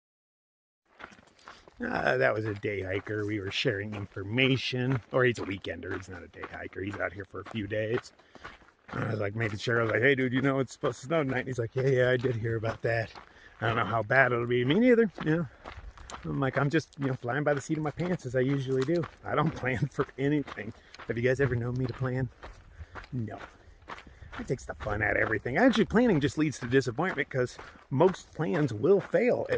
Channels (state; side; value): identical; both; correlation 1.00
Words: That was a day hiker. We were sharing information. Or he's a weekender. He's not a day hiker. He's out here for a few days. I was like making sure. I was like, hey, dude, you know it's supposed to snow tonight? And he's like, yeah, I did hear about that. I don't know how bad it'll be. Me neither. You know, I'm like, I'm just, you know, flying by the seat of my pants as I usually do. I don't plan for anything. Have you guys ever known me to plan? No. It takes the fun out of everything. Actually, planning just leads to disappointment because most plans will fail,